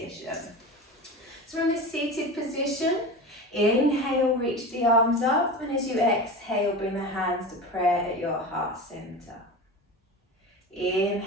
So from this seated position, inhale, reach the arms up, and as you exhale, bring the hands to prayer at your heart center.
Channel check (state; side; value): normal; both; correlation 0.29